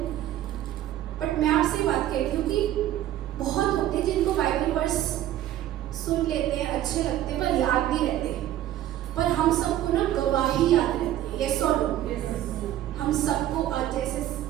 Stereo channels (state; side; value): quieter; left; 12.7 dB